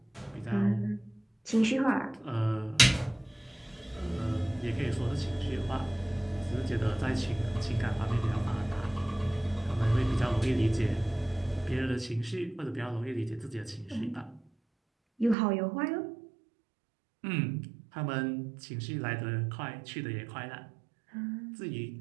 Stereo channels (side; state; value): left; drops out; at 15.4 s